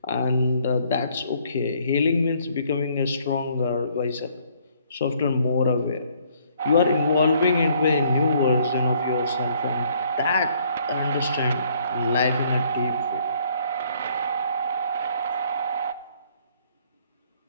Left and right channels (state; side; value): inverted; both; correlation -0.64